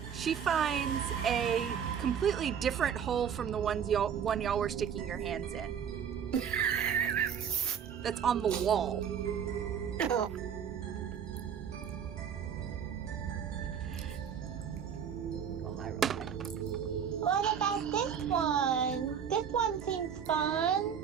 She finds a completely different hole from the one y'all were sticking your hands in. That's on the wall. Oh. What about this one? This one seems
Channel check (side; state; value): left; quieter; 8.0 dB